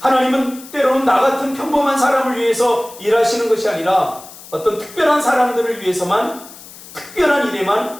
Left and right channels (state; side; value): noise; left; hiss, 18 dB below the sound